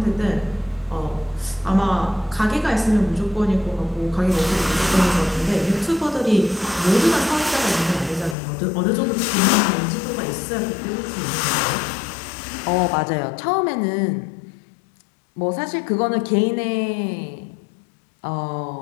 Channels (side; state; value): right; drops out; at 8.3 s